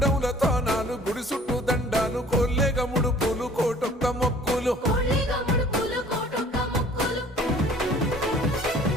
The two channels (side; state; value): both; normal; correlation 0.52